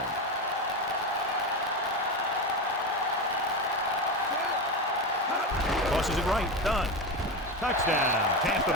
Tosses it right. Done. Touchdown, Tampa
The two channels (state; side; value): normal; both; correlation 0.18